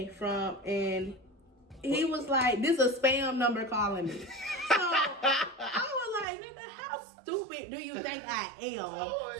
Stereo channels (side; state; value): left; drops out; at 6.2 s